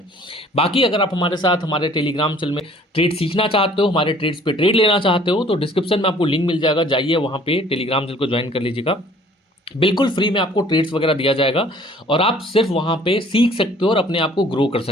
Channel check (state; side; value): normal; both; correlation 0.54